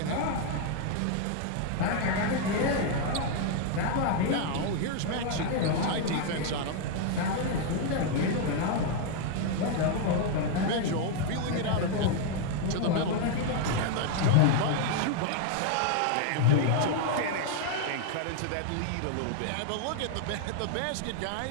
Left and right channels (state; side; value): different; both; correlation 0.00